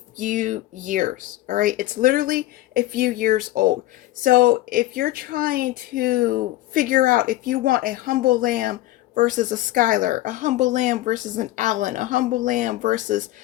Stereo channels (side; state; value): right; quieter; 16.4 dB